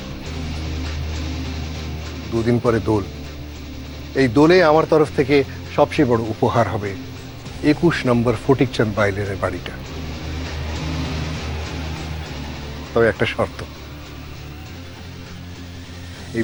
2 দিন পরে দোল। এই দোলে আমার তরফ থেকে সবচেয়ে বড় উপহার হবে 21 নম্বর ফটিকচাঁদ বাইলের বাড়িটা। তবে একটা শর্ত, এই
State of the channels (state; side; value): identical; both; correlation 1.00